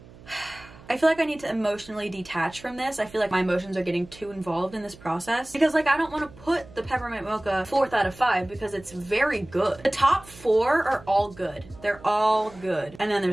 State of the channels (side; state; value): right; noise; hum, 21 dB below the sound